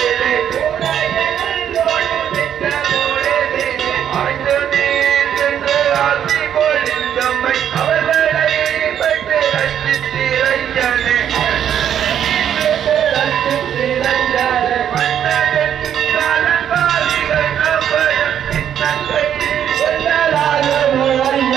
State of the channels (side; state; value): left; quieter; 9.5 dB